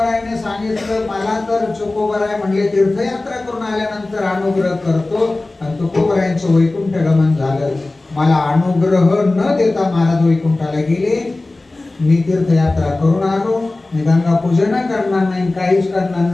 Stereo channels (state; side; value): quieter; right; 3.0 dB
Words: सांगितलं, मला तर तुकोबराय म्हणले तीर्थयात्रा करून आल्यानंतर अनुग्रह करतो, आणि तुकोबरायांचं वैकुंठ गमन झालं. मला अनुग्रह न देता महाराज वैकुंठाला गेले. मी तीर्थयात्रा करून आलो, मी गंगा पूजन करणार नाही, काहीच करणार